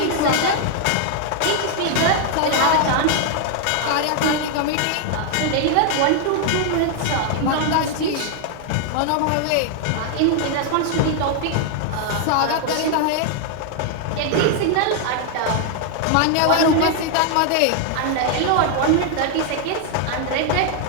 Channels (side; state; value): both; different; correlation 0.00